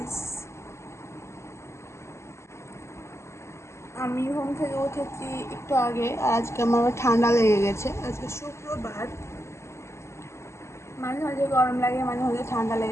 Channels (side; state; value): right; late; 0.13 ms